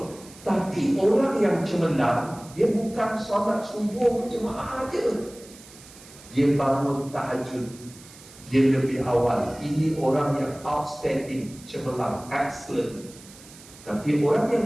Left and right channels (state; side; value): noise; right; hiss, 20 dB below the sound